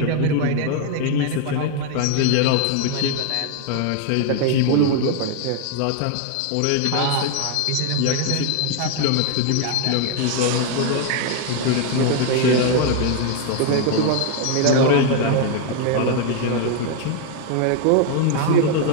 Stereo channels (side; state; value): both; different; correlation 0.00